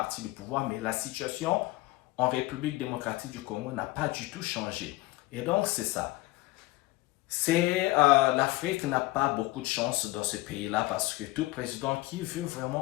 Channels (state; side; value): quieter; right; 19.6 dB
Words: du pouvoir, mais la situation en République démocratique du Congo n'a pas du tout changé. Et donc c'est ça. L'Afrique n'a pas beaucoup de chance dans ce pays-là parce que tout président qui veut